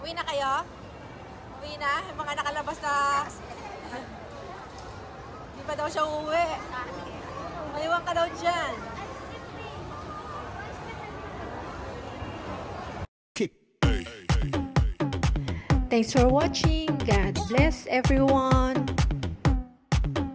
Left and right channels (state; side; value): identical; both; correlation 1.00